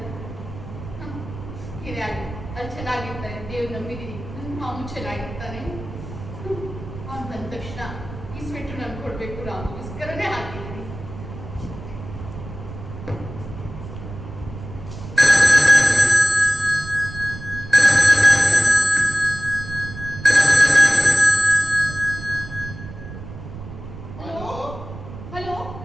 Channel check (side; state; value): right; noise; rumble, 12 dB below the sound